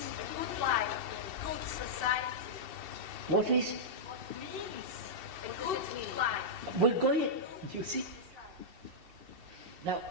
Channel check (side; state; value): left; late; 2.7 ms